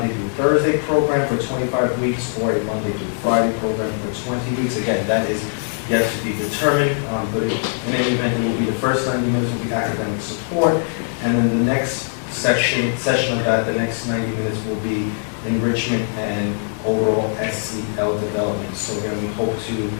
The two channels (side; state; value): right; silent; 59 dB below the other